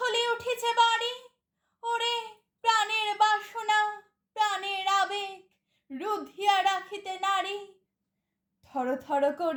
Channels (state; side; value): identical; both; correlation 1.00